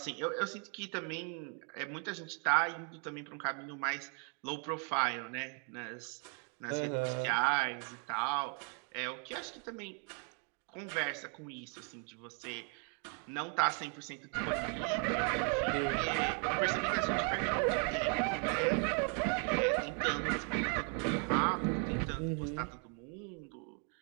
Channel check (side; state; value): left; quieter; 39.4 dB